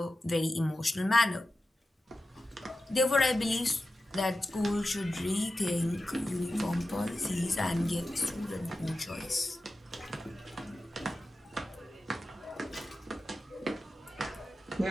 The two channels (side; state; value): both; normal; correlation 0.93